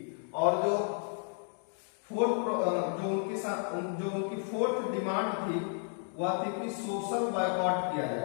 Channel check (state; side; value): silent; right; 56 dB below the other